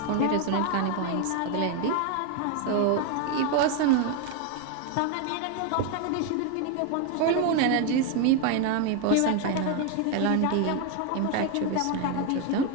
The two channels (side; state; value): both; different; correlation 0.01